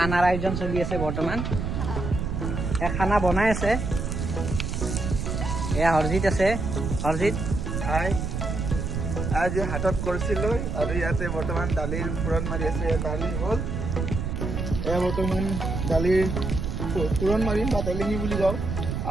আয়োজন চলি আছে বৰ্তমান। এয়া খানা বনাই আছে, এয়া হৰজিত আছে। হৰজিত হাই, আজি হাতত কৰিছিলোঁ আৰু ইয়াতে বৰ্তমান দালিৰ ফুৰণ মাৰি আছে। দালি হ'ল, এয়া বৰ্তমান দালিৰ ফুৰণ মাৰিম বা তেলিঙি বুলি কওঁ।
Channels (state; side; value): noise; right; rumble, 3 dB below the sound